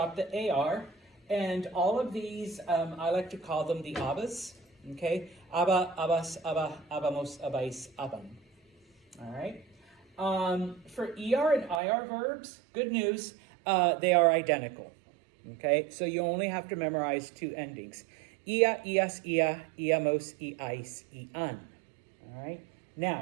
the AR, and all of these, I like to call them the abas, okay? Aba, abas, aba, abamos, abais, aban, all right? For ER and IR verbs, good news, they are identical, okay? So you only have to memorize two endings. Ia, ias, ia, iamos, iais, ian. All right.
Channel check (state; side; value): drops out; left; at 11.8 s